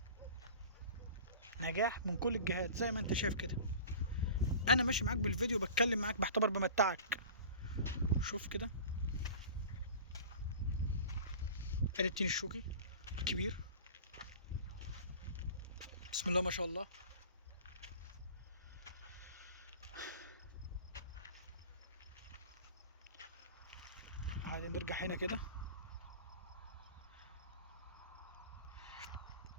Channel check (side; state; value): both; inverted; correlation -0.40